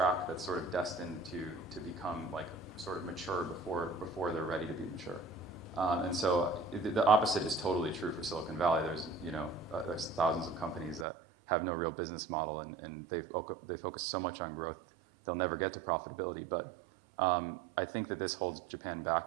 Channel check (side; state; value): left; drops out; at 11.1 s